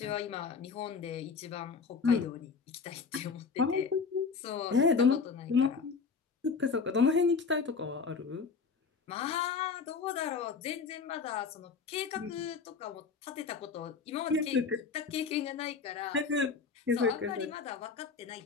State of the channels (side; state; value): right; quieter; 5.2 dB